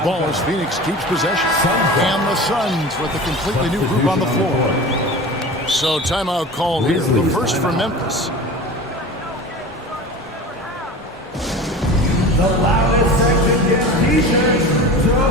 as Phoenix keeps possession. And the Suns with a completely new group on the floor. So timeout called here. The first for Memphis. The loudest section gets t-shirts.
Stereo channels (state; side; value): normal; both; correlation 0.34